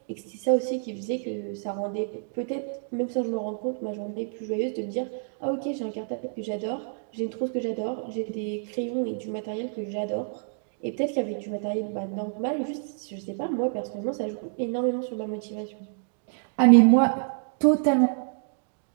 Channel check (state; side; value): silent; left; digital silence